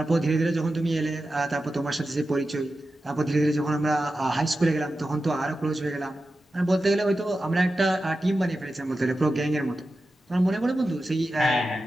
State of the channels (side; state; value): both; normal; correlation 0.92